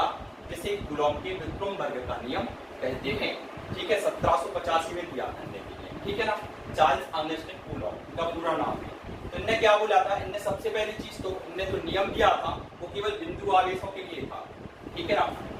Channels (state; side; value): identical; both; correlation 1.00